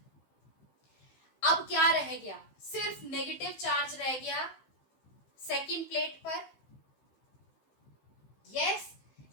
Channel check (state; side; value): late; right; 15 ms